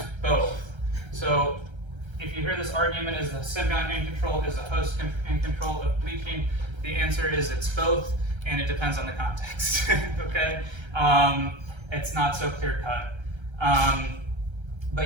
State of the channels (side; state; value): left; late; 1.3 ms